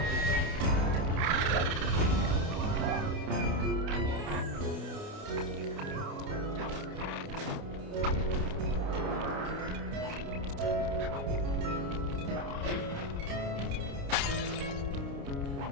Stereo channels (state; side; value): late; left; 29 ms